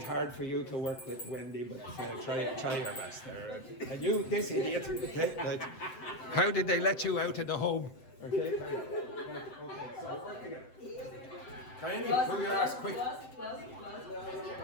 hard for you to work with Wendy, but try your best there. And you, this idiot, okay, how did they let you out of the home? Okay, okay, so work together. Kayeni, pull your ass quick.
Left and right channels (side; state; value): right; late; 7.8 ms